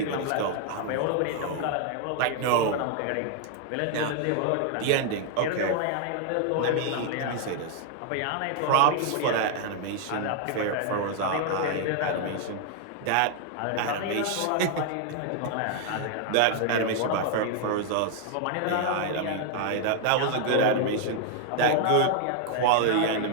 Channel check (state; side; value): different; both; correlation 0.00